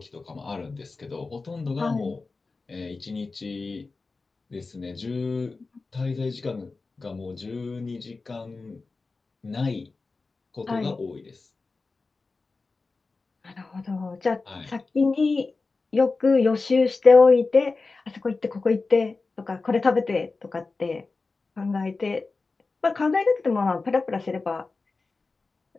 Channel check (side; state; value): right; quieter; 3.9 dB